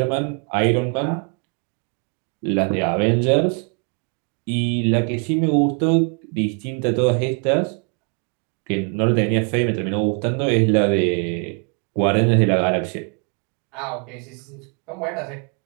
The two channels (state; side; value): quieter; left; 37.4 dB